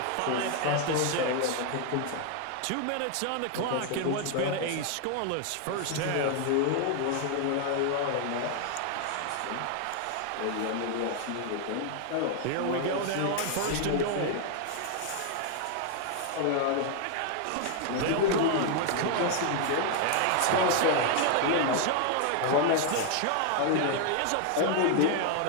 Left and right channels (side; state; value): both; different; correlation 0.00